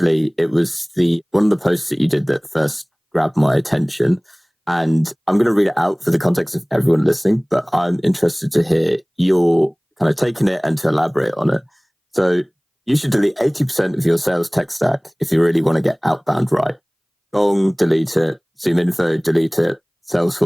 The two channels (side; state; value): both; identical; correlation 1.00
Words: it was one of the posts that you did that first grabbed my attention. And I'm going to read it out for the context of everyone listening, but I'm interested to hear your kind of taking it and to elaborate on it. So you should delete 80% of your sales tech stack if you really want to get outbound right. Gong, delete it. Zoom Info, delete it.